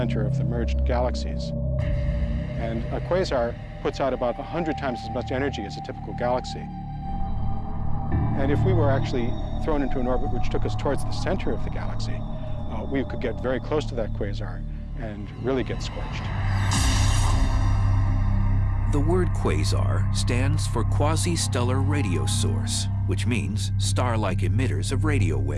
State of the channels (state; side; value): identical; both; correlation 1.00